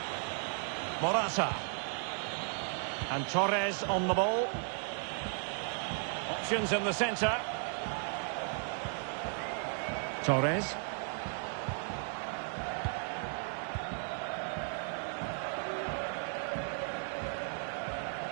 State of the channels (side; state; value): left; silent; 54 dB below the other